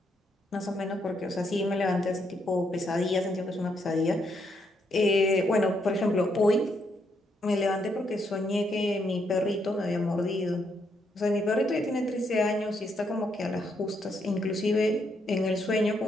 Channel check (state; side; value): normal; both; correlation 0.76